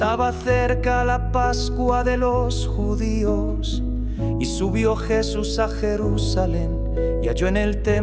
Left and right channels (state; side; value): identical; both; correlation 1.00